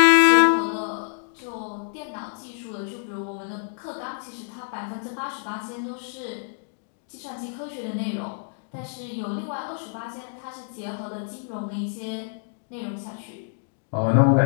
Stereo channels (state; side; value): silent; right; digital silence